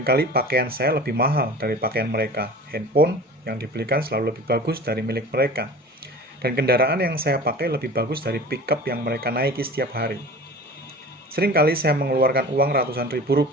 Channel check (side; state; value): both; normal; correlation 0.39